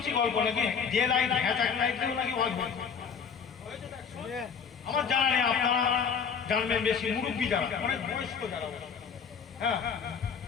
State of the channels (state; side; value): quieter; right; 6.5 dB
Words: গল্প, নাকি যে লাইট হ্যাচাক লাইট দিয়েও নাকি ওয়াজ হয়, আমার জানা নেই, আপনারা জানবেন বেশি, মুরব্বী যারা, অনেক বয়স্ক যারা, হ্যাঁ